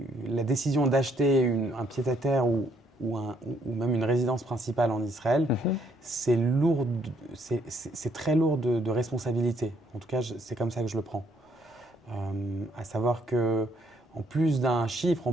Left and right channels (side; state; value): both; normal; correlation 0.69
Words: la décision d'acheter un pied-à-terre ou même une résidence principale en Israël, c'est très lourd de responsabilité. En tout cas, c'est comme ça que je le prends. À savoir que en plus d'un chiffre, en